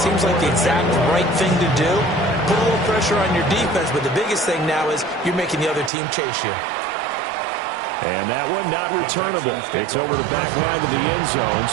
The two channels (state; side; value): drops out; left; at 5.9 s